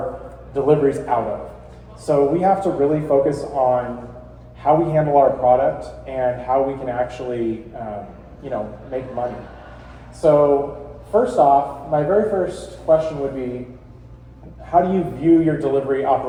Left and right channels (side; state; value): both; identical; correlation 1.00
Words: deliveries out of. So we have to really focus on how we handle our product and how we can actually, make money. So first off, my very first question would be, how do you view your delivery